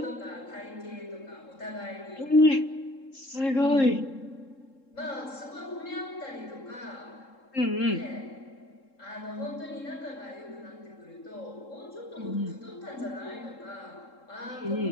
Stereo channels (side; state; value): right; late; 3.7 ms